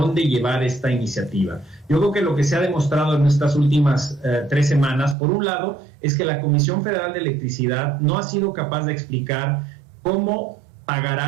llevar esta iniciativa. Yo creo que lo que se ha demostrado en estas últimas 3 semanas, por un lado, es que la Comisión Federal de Electricidad no ha sido capaz de explicar cómo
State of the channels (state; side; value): drops out; left; at 5.2 s